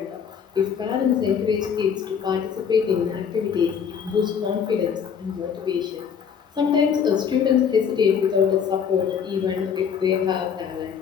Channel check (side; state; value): right; quieter; 7.3 dB